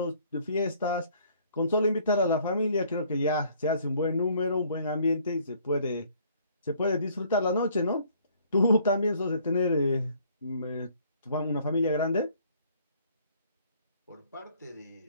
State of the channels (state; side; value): inverted; both; correlation -0.60